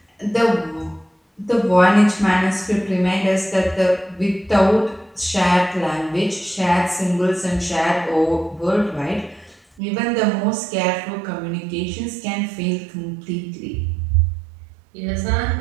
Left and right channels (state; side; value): drops out; left; at 9.8 s